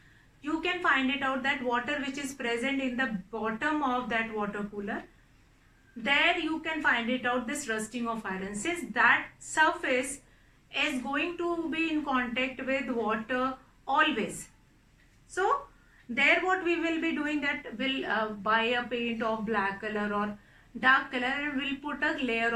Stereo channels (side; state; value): both; identical; correlation 1.00